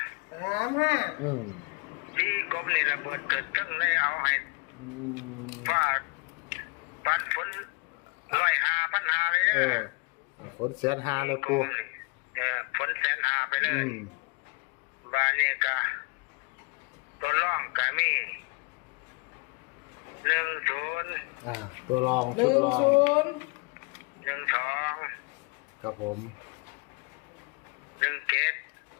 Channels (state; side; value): quieter; right; 30.7 dB